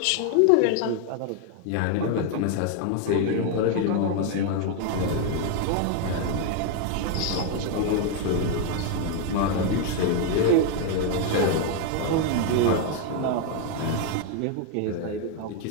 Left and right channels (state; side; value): different; both; correlation 0.01